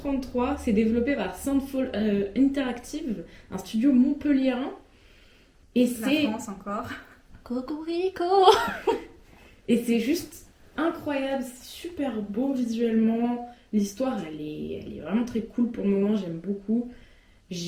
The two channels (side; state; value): both; identical; correlation 1.00